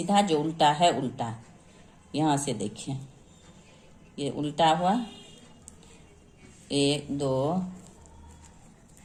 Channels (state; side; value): identical; both; correlation 1.00